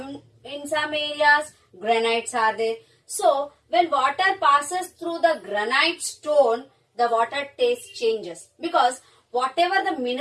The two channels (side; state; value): both; identical; correlation 1.00